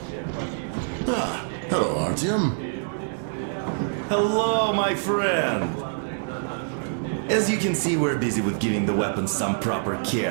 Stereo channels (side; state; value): left; silent; digital silence